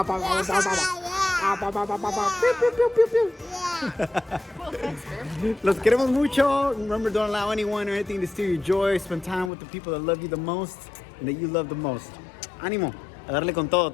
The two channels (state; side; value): drops out; right; at 9.5 s